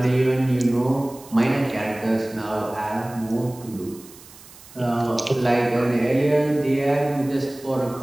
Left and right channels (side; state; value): right; noise; hiss, 21 dB below the sound